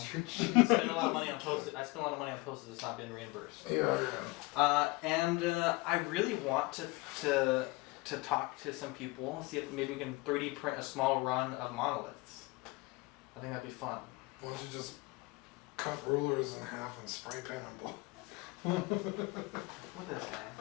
You're cheap. I spend a lot of money on postage. I spend a lot of money on postage that's not been reimbursed. Yeah. And I really want to talk to some people, see if maybe we can 3D print a small run of monoliths. I think that'd be fun. Why don't you just cut rulers in half and spray paint them? Look at this guy.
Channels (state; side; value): quieter; right; 23.9 dB